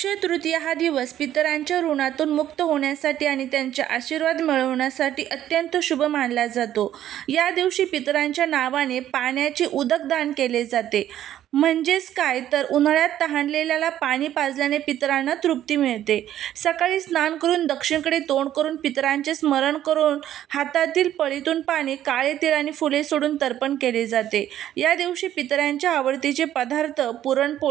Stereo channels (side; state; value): left; quieter; 11.8 dB